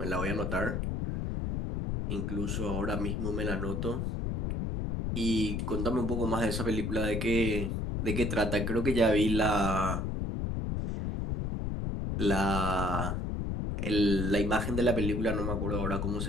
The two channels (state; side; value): noise; left; rumble, 1 dB below the sound